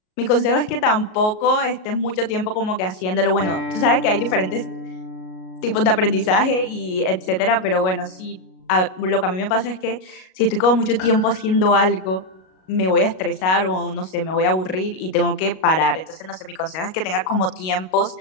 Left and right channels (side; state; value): right; late; 38 ms